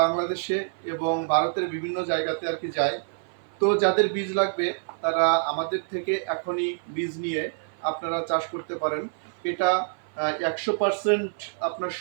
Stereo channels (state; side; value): silent; left; 55 dB below the other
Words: বাংলাদেশে এবং ভারতের বিভিন্ন জায়গাতে আর কি যায়। তো যাদের বীজ লাগবে তারা আমাদের থেকে এখনই বীজ নিয়ে আপনারা চাষ করতে পারেন। এটা 100% আপনার